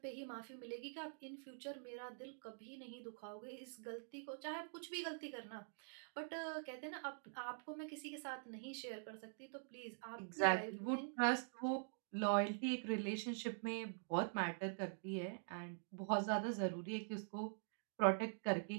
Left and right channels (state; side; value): silent; left; digital silence